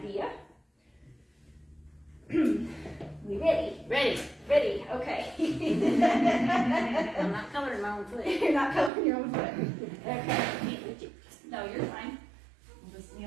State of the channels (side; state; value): left; drops out; at 8.9 s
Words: We ready? Ready, okay. I'm not coloring my own foot. You're not coloring your own foot. Okay. No, you're fine. We'll just